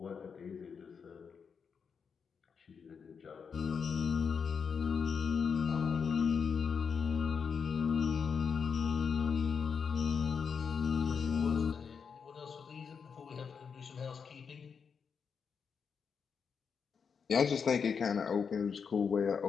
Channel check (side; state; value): right; quieter; 6.2 dB